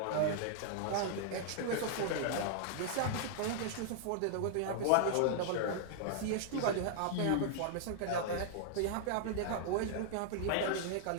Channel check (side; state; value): both; different; correlation -0.01